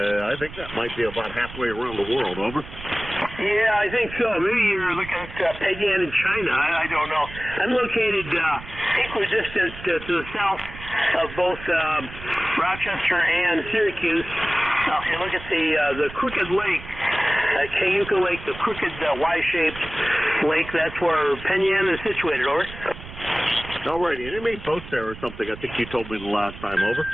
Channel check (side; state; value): right; noise; rumble, 14 dB below the sound